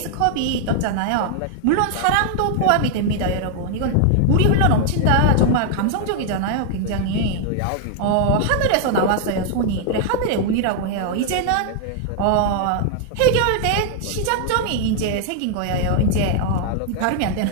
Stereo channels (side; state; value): both; different; correlation 0.00